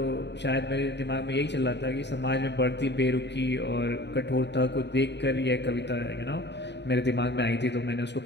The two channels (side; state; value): right; late; 0.50 ms